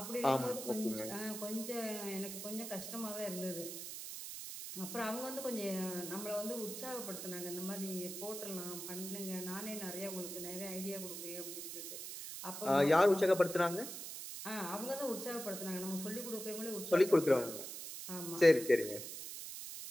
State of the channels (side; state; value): right; noise; hiss, 8 dB below the sound